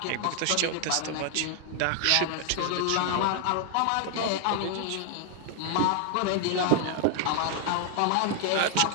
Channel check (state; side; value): different; both; correlation 0.00